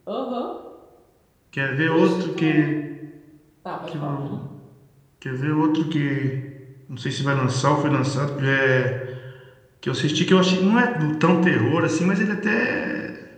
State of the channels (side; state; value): both; identical; correlation 1.00